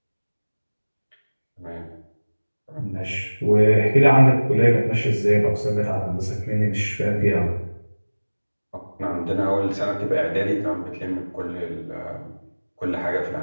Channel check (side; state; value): both; inverted; correlation -1.00